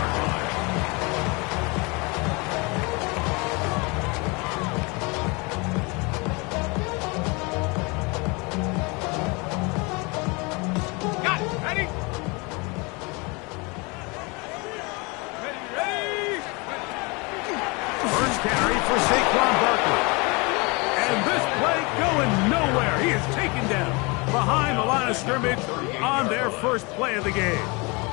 Scrimmage on their first play of the game.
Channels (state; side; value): quieter; right; 28.2 dB